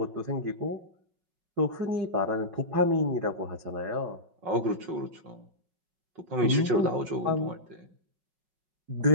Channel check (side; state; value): left; late; 5.4 ms